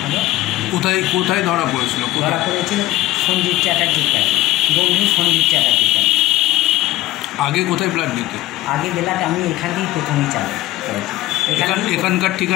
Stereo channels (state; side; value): quieter; right; 16.6 dB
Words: হলো। কোথায় কোথায় ধরা পড়েছিল? ধরা পড়েছিল সঞ্জীব চ্যাটার্জির কাছে, বন্ধু সঞ্জীব চ্যাটার্জির কাছে। আগে কোথায় ব্লাড দিতে? আগে বেলাটা আমি এখান থেকেই প্রথমেই চালু করেছি। এখানকার